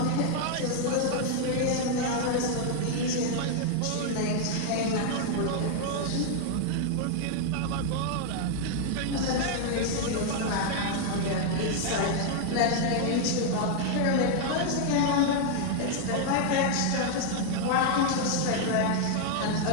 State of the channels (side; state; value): both; different; correlation 0.00